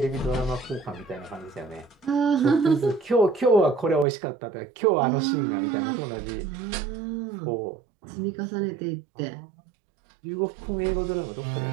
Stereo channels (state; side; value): drops out; left; at 4.0 s